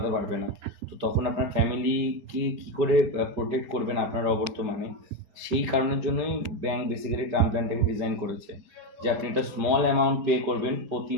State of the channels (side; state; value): left; late; 5.1 ms